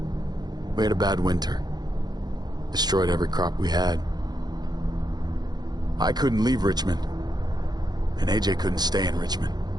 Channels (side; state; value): left; late; 0.20 ms